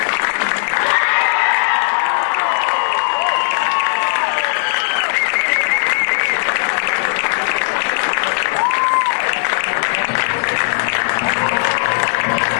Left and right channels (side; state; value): right; silent; digital silence